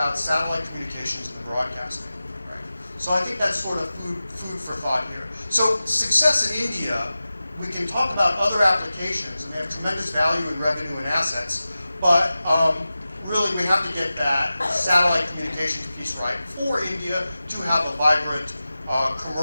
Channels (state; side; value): inverted; both; correlation -0.95